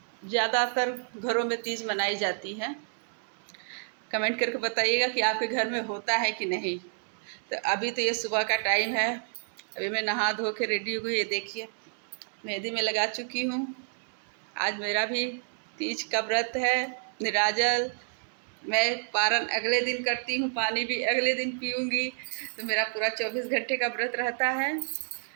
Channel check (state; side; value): silent; left; digital silence